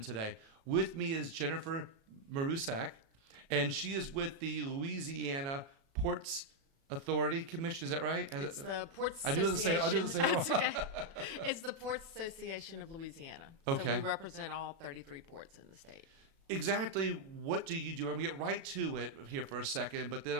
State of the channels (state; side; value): late; left; 36 ms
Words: today. With me is Jennifer Marusak, and she is with the Louisiana Ports Authority Commission. Is that right? It's the Ports I do the same. Wrong. It's okay. It's the Ports Association of Louisiana. So Okay. we represent all 33 ports in the state. Exactly what do you do? I'm going to get right to it here for a second, but